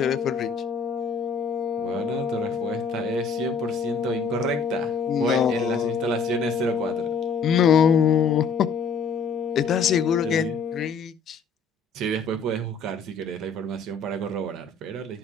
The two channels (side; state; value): right; quieter; 4.9 dB